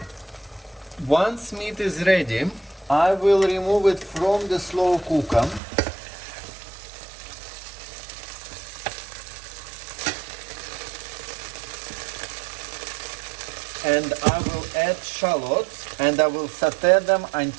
Once meat is ready, I will remove it from the slow cooker and I will add shallots and I will sauté them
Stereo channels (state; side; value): drops out; left; at 5.6 s